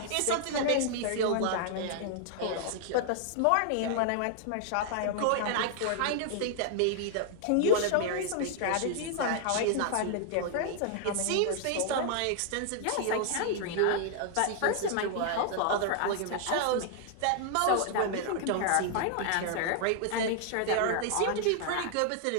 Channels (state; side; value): different; both; correlation 0.00